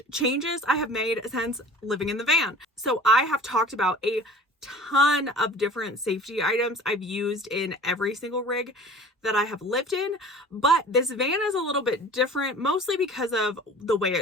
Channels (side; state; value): both; normal; correlation 0.44